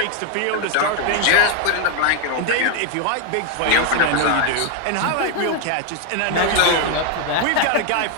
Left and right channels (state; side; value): different; both; correlation 0.01